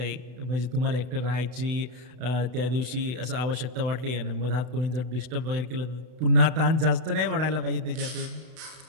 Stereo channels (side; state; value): left; late; 32 ms